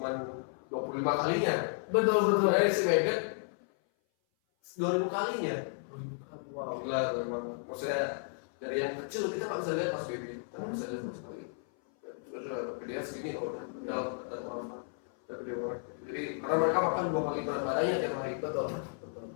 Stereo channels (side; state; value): right; silent; 56 dB below the other